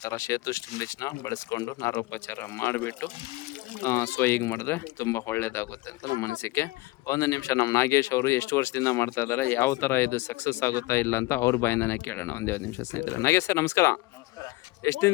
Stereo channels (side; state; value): right; quieter; 20.2 dB